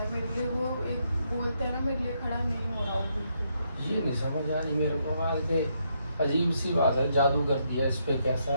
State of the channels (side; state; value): both; inverted; correlation -0.76